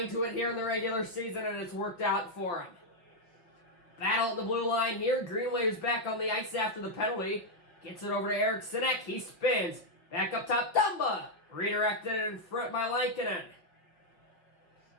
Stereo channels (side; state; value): right; late; 5.3 ms